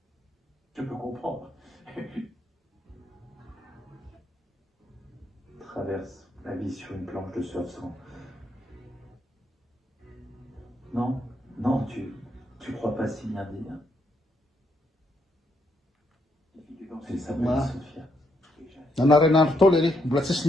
Je peux comprendre. Traverse la vie sur une planche de surf sans. Non, non, tu crois pas si bien dire. Les filles dans Elle ces s'appelle Ouais. Sophia. Nanarain'andro tao le mbola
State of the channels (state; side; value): normal; both; correlation 0.76